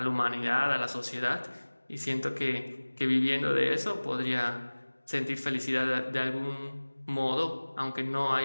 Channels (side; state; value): both; inverted; correlation -1.00